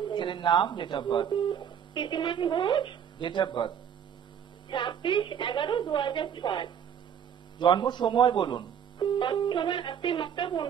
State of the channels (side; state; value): left; quieter; 8.4 dB